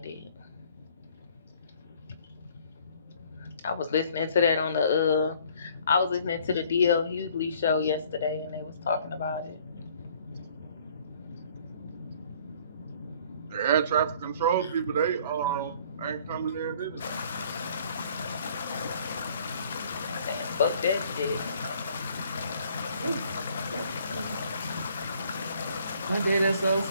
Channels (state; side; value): inverted; both; correlation -0.58